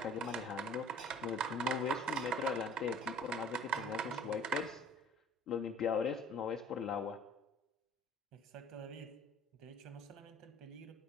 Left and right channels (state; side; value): normal; both; correlation 0.50